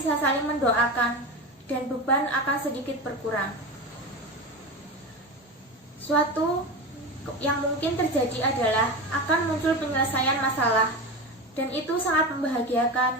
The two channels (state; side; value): normal; both; correlation 0.24